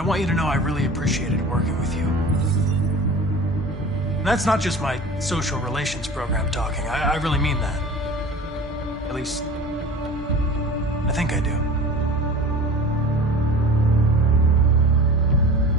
want you to know I really appreciated working with you. And that's not just my social relations program talking. I really mean that. At least, I think I do.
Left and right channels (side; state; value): both; normal; correlation 0.38